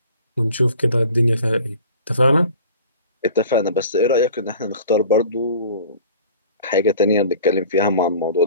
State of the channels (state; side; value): inverted; both; correlation -0.45